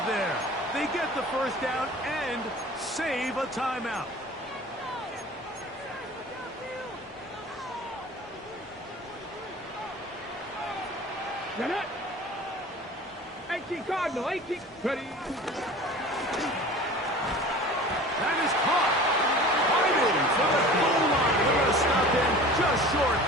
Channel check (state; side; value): normal; both; correlation 0.41